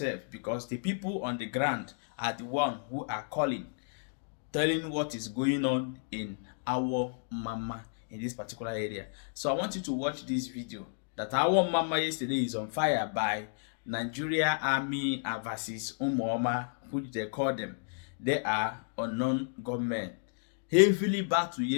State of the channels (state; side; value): silent; right; digital silence